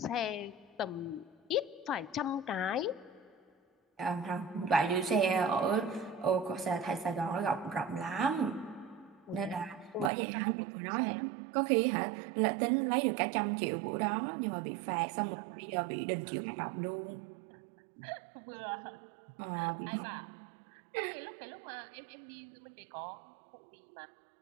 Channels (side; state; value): left; drops out; at 10.1 s